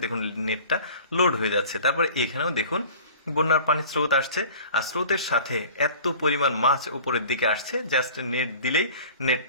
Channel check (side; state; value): both; inverted; correlation -0.44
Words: দেখুন নেটটা লোড হয়ে যাচ্ছে। তারপরে এখানেও দেখুন বন্যার পানির স্রোত আসছে আর স্রোতের সাথে এত পরিমাণ মাছ উপরের দিকে আসছে, জাস্ট নেট দিলেই